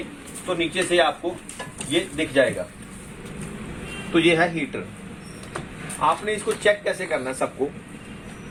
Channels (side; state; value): both; identical; correlation 1.00